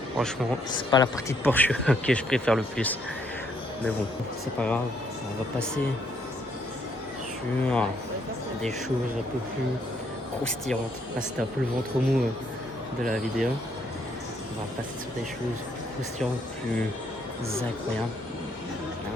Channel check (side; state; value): both; normal; correlation 0.70